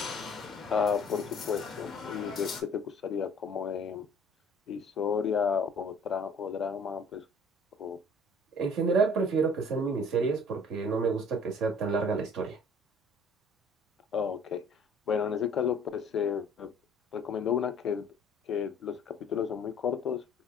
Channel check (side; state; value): both; normal; correlation 0.53